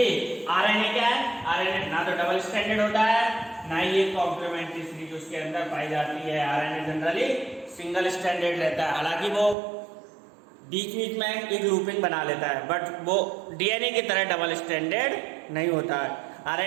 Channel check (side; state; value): left; drops out; at 9.6 s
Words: आरएनए क्या है? आरएनए ना तो डबल स्टैंडर्ड होता है ना ही ये कॉम्प्लीमेंट्री सीरीज उसके अंदर पाई जाती है। आरएनए जनरली सिंगल स्टैंडर्ड रहता है, हालांकि वो बीच में एक लूपिंग बना लेता है, बट वो डीएनए की तरह डबल स्टैंडर्ड नहीं होता है।